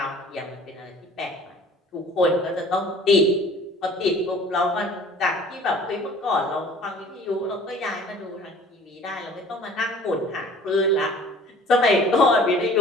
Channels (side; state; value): both; normal; correlation 0.48